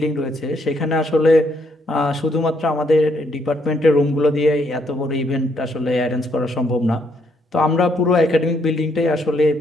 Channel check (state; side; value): normal; both; correlation 0.72